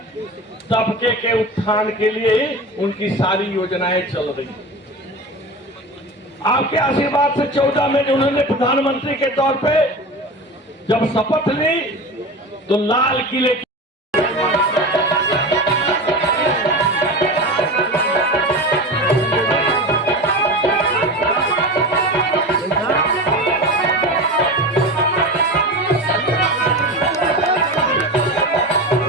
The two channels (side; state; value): both; normal; correlation 0.28